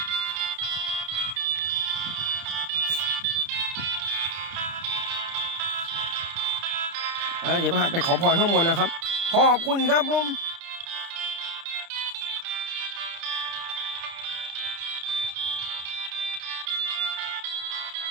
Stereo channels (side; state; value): left; late; 30 ms